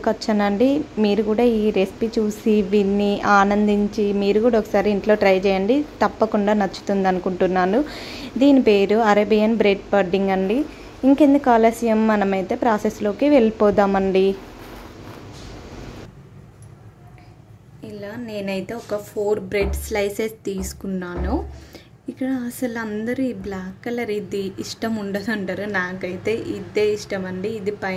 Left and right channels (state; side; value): identical; both; correlation 1.00